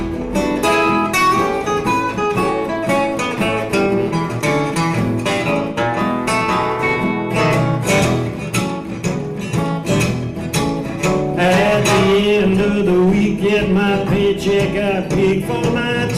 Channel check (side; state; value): both; identical; correlation 1.00